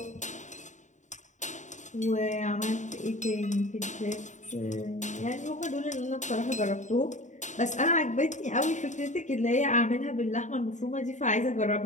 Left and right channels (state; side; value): late; right; 0.35 ms